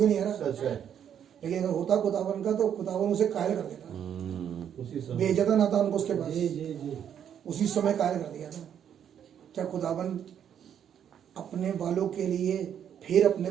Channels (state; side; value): quieter; left; 9.0 dB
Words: नहीं आ रहा। लेकिन अगर होता खुदावन का तो खुदावन उसे कायल कर देता, भेजा था नातान को उसके पास, उसी समय कायल कर दिया था। क्या खुदावन अपने वालों के लिए फिर अपने